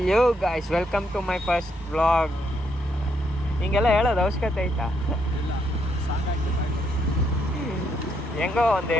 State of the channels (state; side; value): normal; both; correlation 0.75